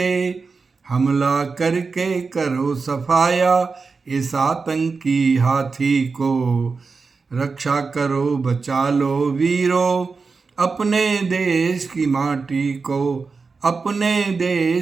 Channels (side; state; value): left; quieter; 4.6 dB